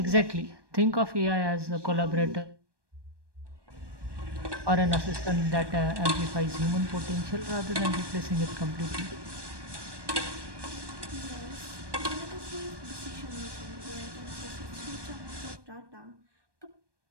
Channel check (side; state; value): left; late; 1.2 ms